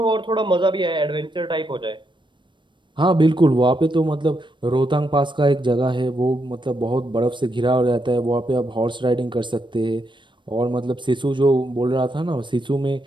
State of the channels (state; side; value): late; left; 0.23 ms